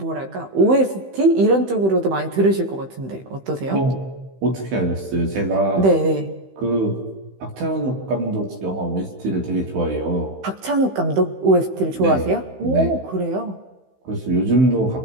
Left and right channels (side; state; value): left; late; 15 ms